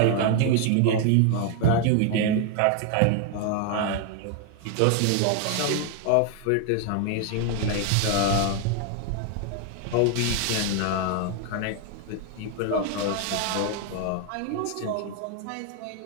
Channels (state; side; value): different; both; correlation 0.01